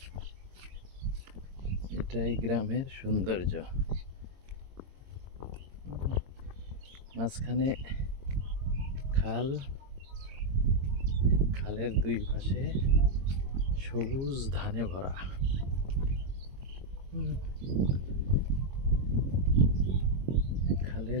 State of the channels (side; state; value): left; late; 22 ms